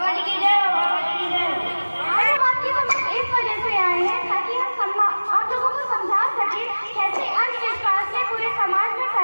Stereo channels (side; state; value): both; inverted; correlation -1.00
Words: जी की जय हो, बाबा जी की जय हो। आज हम आपकी समझ इस वजह से आए हैं ताकि हम आप लोगों को समझा सके कैसे अंधविश्वास में पूरे समाज में